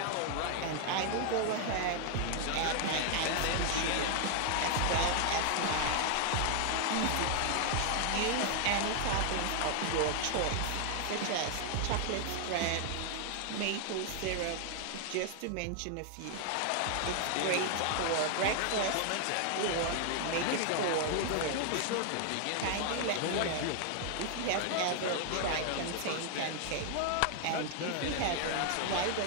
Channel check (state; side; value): different; both; correlation 0.00